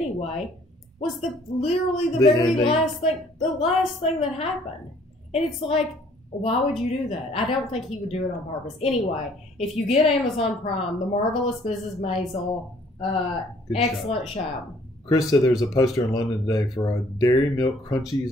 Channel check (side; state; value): both; normal; correlation 0.60